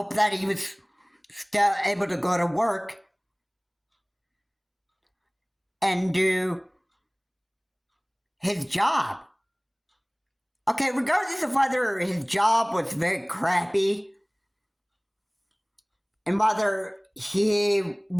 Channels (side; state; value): both; identical; correlation 1.00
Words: that he was still able to go to work and do his job. Okay, regardless of whether his job was very crappy and whether he